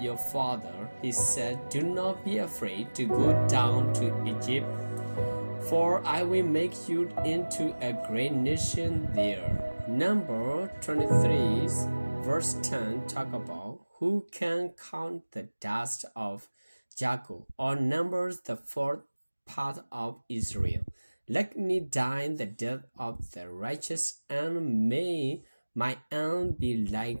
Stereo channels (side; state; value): both; inverted; correlation -1.00